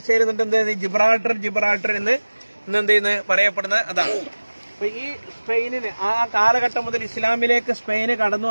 എന്നിട്ട് ജിബ്രാൾട്ടർ എന്ന് എന്ത് ചെയ്യുന്നത് പറയപ്പെടുന്നത് അതാണ്. അപ്പൊ ഈ സ്പെയിനിന് ആ കാലഘട്ടം മുതൽ ഇസ്ലാമിലേക്ക് സ്പെയിന് കടന്നു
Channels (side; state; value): both; inverted; correlation -1.00